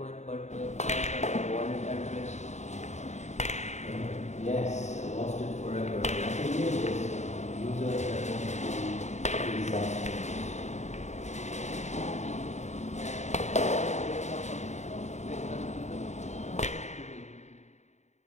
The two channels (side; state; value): right; late; 0.33 ms